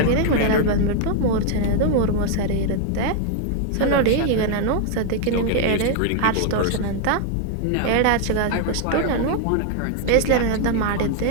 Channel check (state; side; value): different; both; correlation 0.00